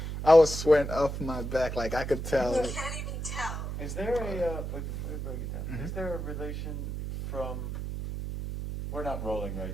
I was sweating off my back, like I could tell. You can't even tell. Is there before we break it down, is there a relation from, we're not rolling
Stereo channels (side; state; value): right; noise; hum, 5 dB below the sound